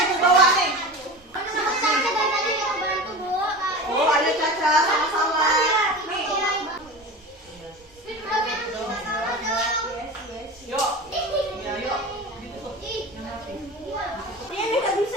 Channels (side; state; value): both; normal; correlation 0.31